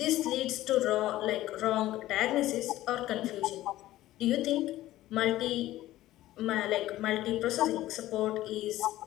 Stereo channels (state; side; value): quieter; right; 15.3 dB